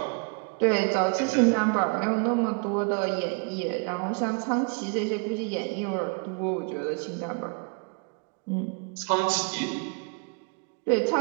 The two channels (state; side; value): quieter; left; 38.3 dB